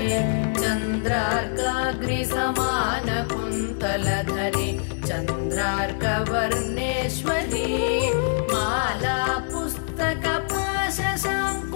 चन्द्रार्काग्निसमानकुन्तलधरी चन्द्रार्कवर्णेश्वरी माला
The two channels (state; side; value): silent; right; digital silence